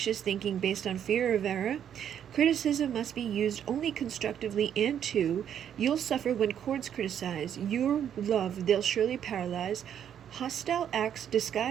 thinking based on fear of error. Criticism must be used only constructively, and 2, you'll suffer when courts criticize. Your love they'll surely paralyze. Hostile acts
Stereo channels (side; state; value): left; quieter; 9.3 dB